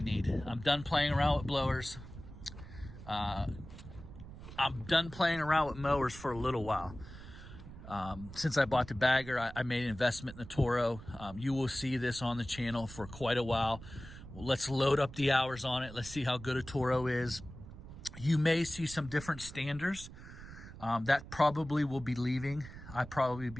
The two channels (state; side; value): noise; right; rumble, 14 dB below the sound